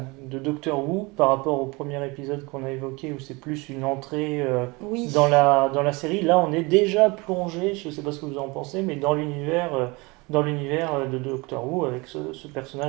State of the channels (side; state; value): left; quieter; 25.9 dB